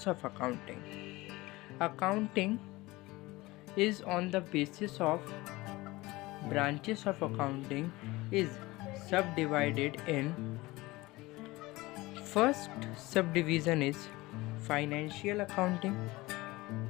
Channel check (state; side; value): quieter; right; 20.6 dB